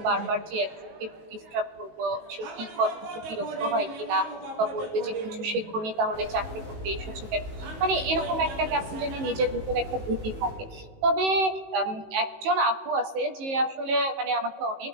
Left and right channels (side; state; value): left; late; 19 ms